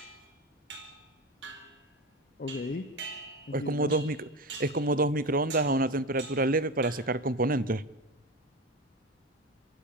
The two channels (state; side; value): normal; both; correlation 0.23